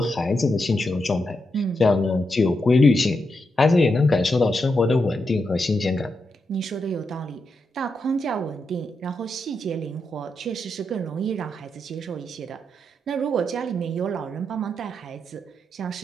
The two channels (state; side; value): normal; both; correlation 0.85